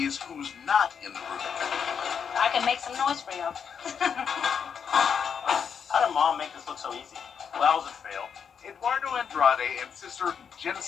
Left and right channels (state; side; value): quieter; right; 7.0 dB